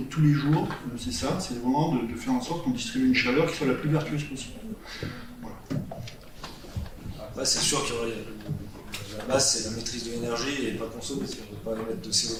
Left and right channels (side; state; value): both; identical; correlation 1.00